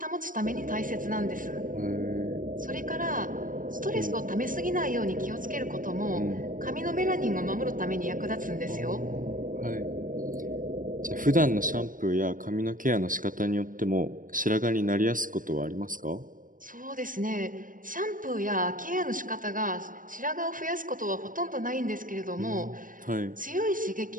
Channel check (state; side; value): late; left; 0.39 ms